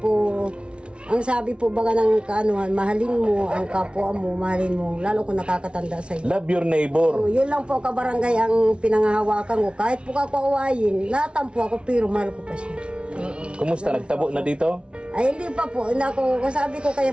ang sabi po baga ng kaanuhan, mahalin mo ang kapwa mo, mahalin mo, lalo kung nakakatanda sa iyo. Love your neighbor. Yun lang po kabarangay ang pinangahawakan ko. Kahit po ako awayin, natampo ako pero mahal ko pa siya. Kumusta? Nagtabo na dito? Ay hindi pa po, hindi ako, sabi ko kay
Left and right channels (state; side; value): late; left; 0.058 ms